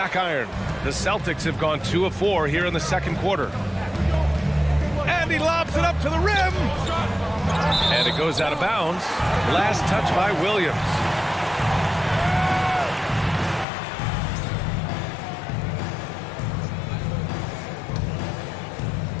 iron. The Celtics have gone 2 of 4 here in the second quarter. And he lobs it up to the rim. And it goes out of bounds. Last touch by Williams.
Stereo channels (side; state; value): right; drops out; at 13.7 s